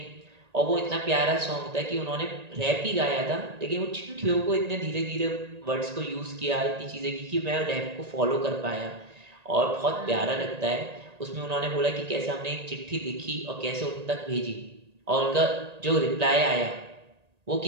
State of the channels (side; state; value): left; late; 1.8 ms